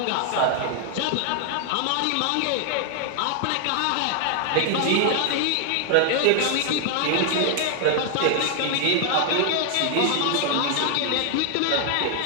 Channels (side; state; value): both; different; correlation 0.00